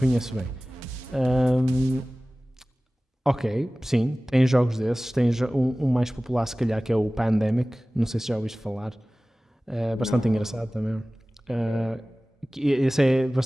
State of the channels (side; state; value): both; normal; correlation 0.98